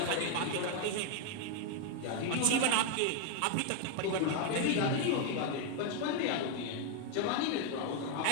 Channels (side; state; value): both; different; correlation 0.01